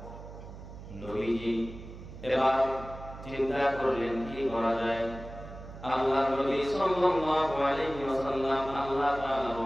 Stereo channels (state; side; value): noise; right; hum, 14 dB below the sound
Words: নবীজি এবার চিন্তা করলেন কি করা যায়। আল্লাহ নবী সাল্লাল্লাহু আলাইহি ওয়াসাল্লাম আল্লাহ তাআলার